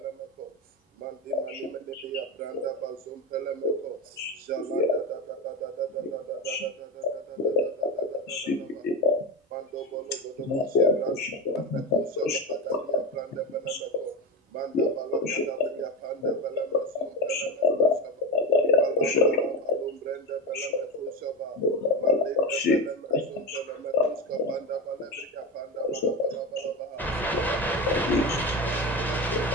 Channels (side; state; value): both; normal; correlation 0.19